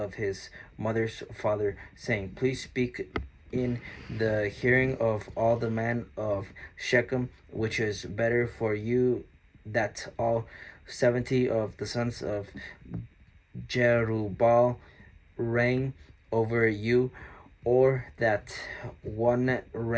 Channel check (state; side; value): identical; both; correlation 1.00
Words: his mother's father, saying, Please speak in the hearing of all the men of Shechem, which is better for you that all 70 of the sons of Jerubbaal reign over you, or that one